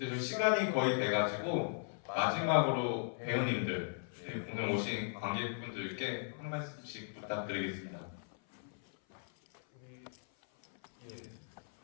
좀 시간이 거의 돼가지고 마지막으로 배우님들 오늘 오신 관객분들께 한 말씀씩 부탁드리겠습니다.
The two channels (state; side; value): silent; right; 53 dB below the other